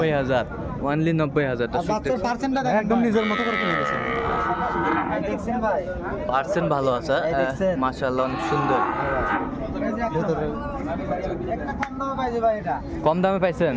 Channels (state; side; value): identical; both; correlation 1.00